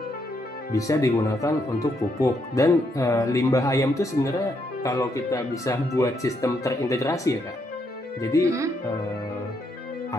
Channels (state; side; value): normal; both; correlation 0.76